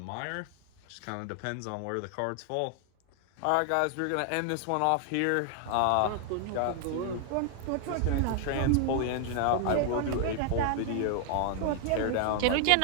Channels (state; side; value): different; both; correlation 0.00